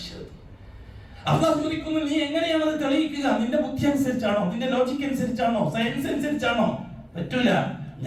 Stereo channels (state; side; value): identical; both; correlation 1.00